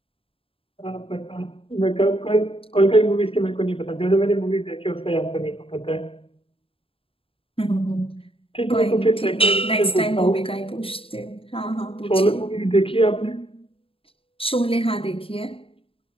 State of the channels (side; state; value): right; late; 0.27 ms